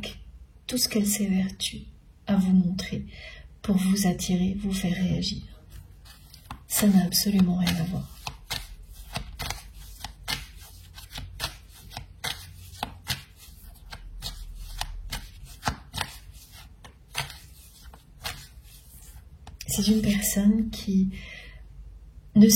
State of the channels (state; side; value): identical; both; correlation 1.00